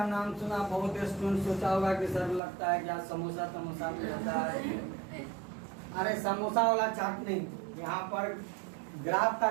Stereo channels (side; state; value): left; drops out; at 2.4 s